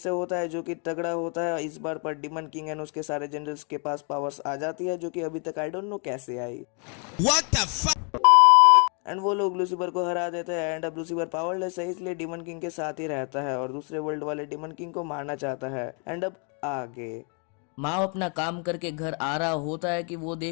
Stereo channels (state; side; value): quieter; right; 38.7 dB